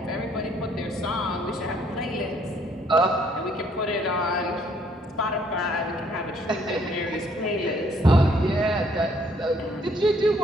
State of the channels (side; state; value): both; normal; correlation 0.65